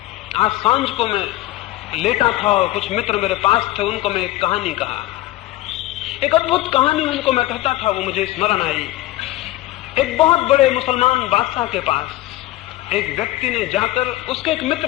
आज सांझ को मैं लेटा था और कुछ मित्र मेरे पास थे, उनको मैं एक कहानी कहा, एक अद्भुत कहानी उनको मैं कहता था, वो मुझे स्मरण आई। एक बहुत बड़े मुसलमान बादशाह के पास एक व्यक्ति ने जाकर, उसके एक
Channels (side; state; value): right; quieter; 16.8 dB